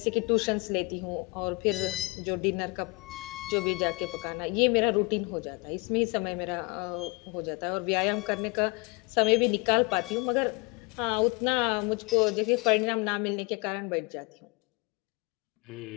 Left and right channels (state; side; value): quieter; right; 27.4 dB